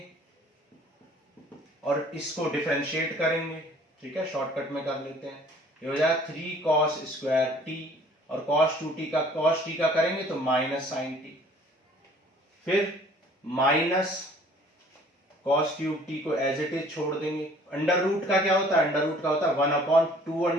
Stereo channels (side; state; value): both; normal; correlation 0.54